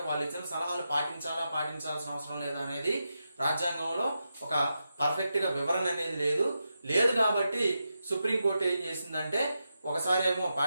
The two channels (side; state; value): both; inverted; correlation -0.88